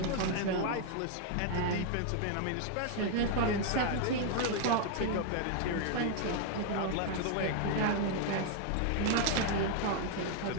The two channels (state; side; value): different; both; correlation 0.00